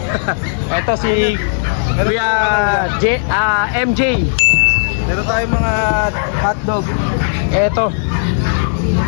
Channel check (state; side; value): silent; right; digital silence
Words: Ito si Kuya MJ. Meron tayong mga hotdog. Ito.